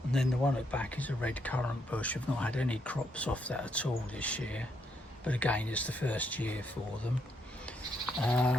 And then the one at the back is a red currant bush. I've not had any crops off that at all this year, but again, it's the first year for them.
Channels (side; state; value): both; normal; correlation 0.76